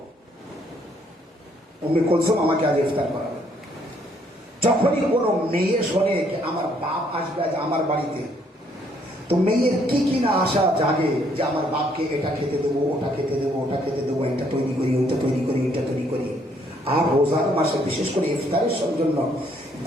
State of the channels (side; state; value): both; normal; correlation 0.67